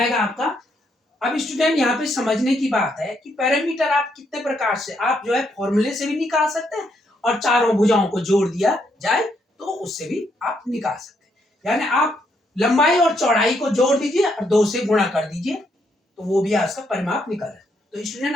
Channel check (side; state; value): both; normal; correlation 0.75